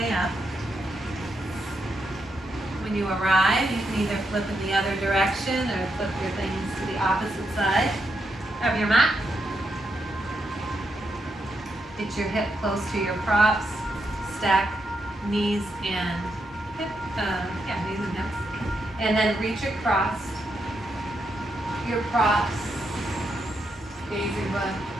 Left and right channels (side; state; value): both; normal; correlation 0.82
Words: up. When you arrive, you can either flip in the other direction or flip your things to the opposite side of your mat. Get your hip close to your props. Stack knees and hips. And then reach across your props, gazing